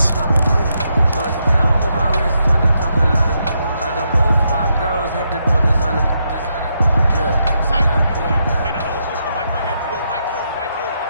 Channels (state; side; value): inverted; both; correlation -0.80